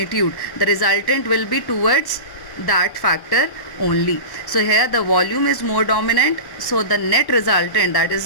The resultant will be towards that factor only. So here the volume is more dominant, so the net resultant, that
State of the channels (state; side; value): late; right; 1.1 ms